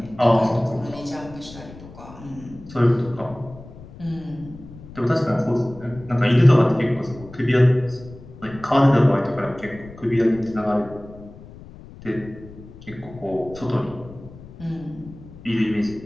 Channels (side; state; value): left; noise; rumble, 18 dB below the sound